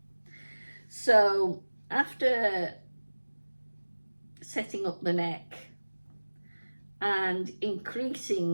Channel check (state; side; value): inverted; both; correlation -1.00